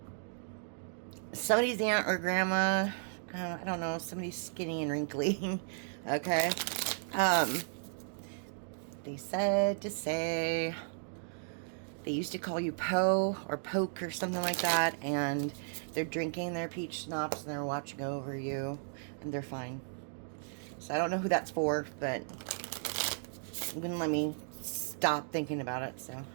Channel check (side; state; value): left; silent; digital silence